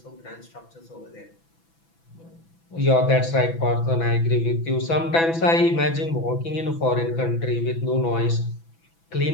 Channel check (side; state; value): right; late; 6.0 ms